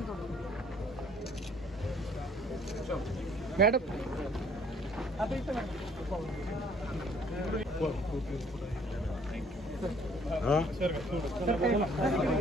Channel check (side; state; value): both; normal; correlation 0.59